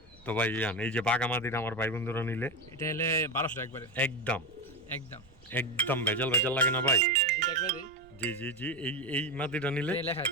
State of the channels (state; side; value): noise; right; rumble, 26 dB below the sound